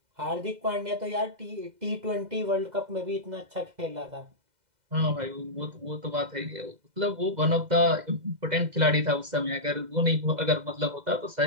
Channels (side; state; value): left; late; 2.0 ms